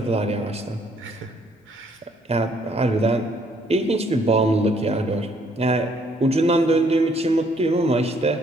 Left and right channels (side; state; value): both; normal; correlation 0.66